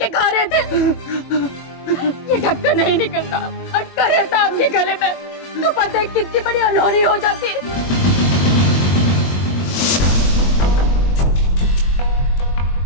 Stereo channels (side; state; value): right; late; 22 ms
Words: खा रहे थे। ये ढक्कन नहीं निकलता, अटका रहता आपके गले में, तो पता है कितनी बड़ी अनहोनी हो जाती।